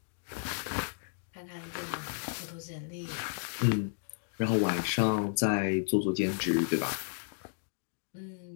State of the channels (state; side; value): silent; right; digital silence